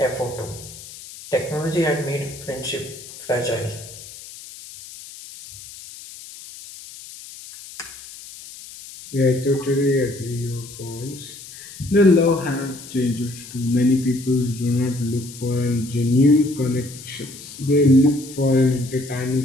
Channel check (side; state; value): left; noise; hiss, 16 dB below the sound